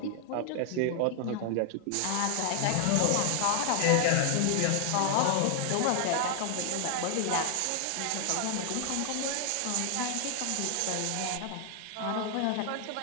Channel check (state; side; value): different; both; correlation 0.00